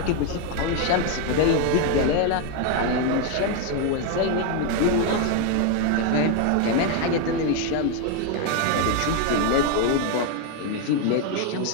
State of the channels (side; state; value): both; different; correlation 0.01